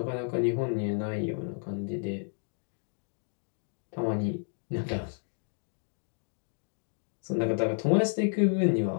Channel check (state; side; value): silent; right; 57 dB below the other